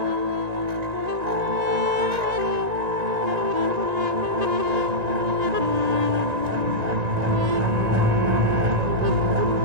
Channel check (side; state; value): left; late; 1.9 ms